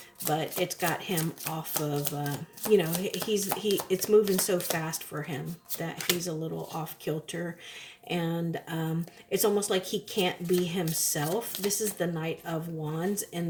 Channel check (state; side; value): identical; both; correlation 1.00